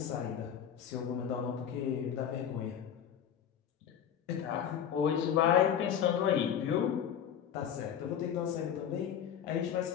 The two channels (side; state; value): right; quieter; 9.0 dB